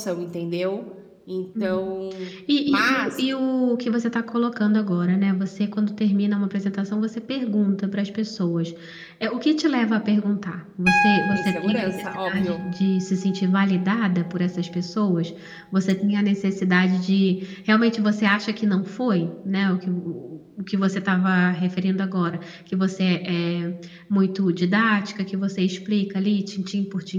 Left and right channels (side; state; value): both; identical; correlation 1.00